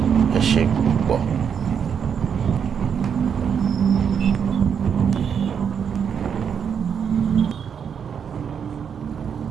Ẹ ṣé púpọ̀.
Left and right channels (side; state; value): left; quieter; 7.4 dB